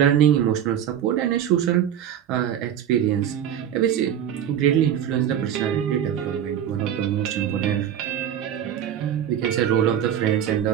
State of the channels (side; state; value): left; quieter; 9.8 dB